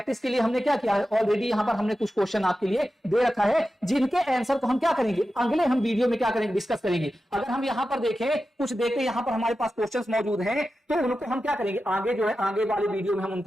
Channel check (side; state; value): both; normal; correlation 0.92